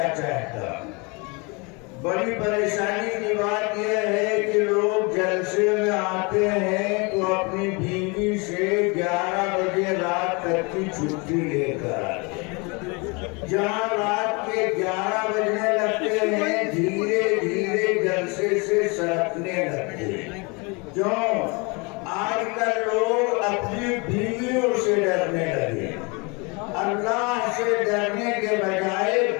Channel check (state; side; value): quieter; right; 29.4 dB